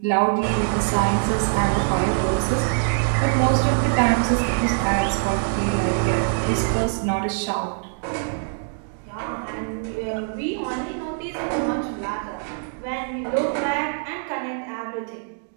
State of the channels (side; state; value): left; silent; digital silence